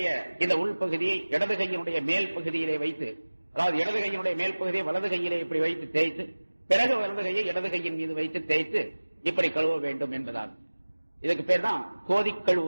இந்த உள்பகுதியை இடது கையினுடைய மேல் பகுதியிலே வைத்து, அதாவது இடது கையினுடைய மேல் பகுதியை வலது கையிலே இப்படி வைத்து தேய்த்து, பிறகு வலது கையை இடது கையின் மீது வைத்து தேய்த்து இப்படி கழுவ வேண்டும் என்பதால் இதுக்கு பேர் தான் கோதி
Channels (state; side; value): inverted; both; correlation -1.00